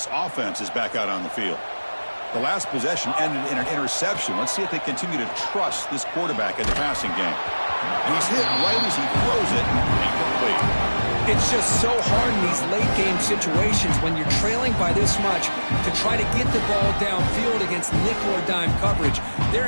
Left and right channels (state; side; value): inverted; both; correlation -1.00